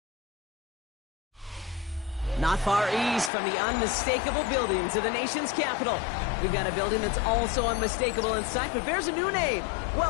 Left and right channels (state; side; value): drops out; right; at 3.3 s